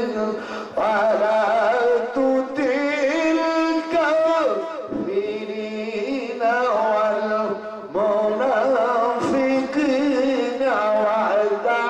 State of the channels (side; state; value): both; identical; correlation 1.00